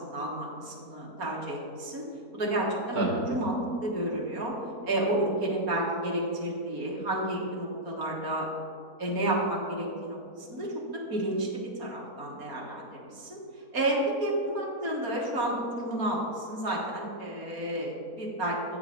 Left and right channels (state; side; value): late; left; 4.3 ms